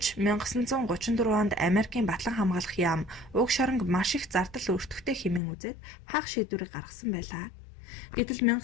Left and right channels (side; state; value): right; drops out; at 5.4 s